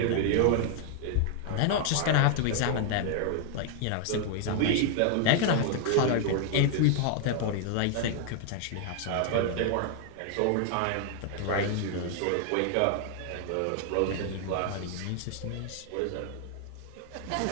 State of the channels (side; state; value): both; different; correlation 0.00